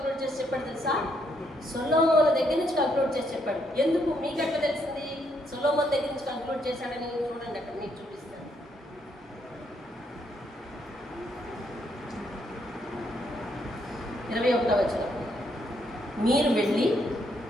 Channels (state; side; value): normal; both; correlation 0.74